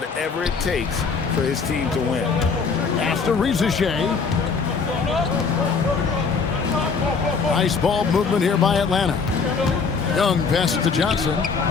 it takes for his team to win. Pass to Rizashay. Nice ball movement here by Atlanta. Young passes to Johnson.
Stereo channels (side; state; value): right; quieter; 5.2 dB